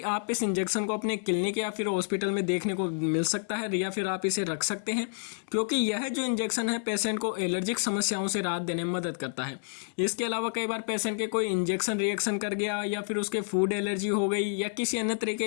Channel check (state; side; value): silent; right; digital silence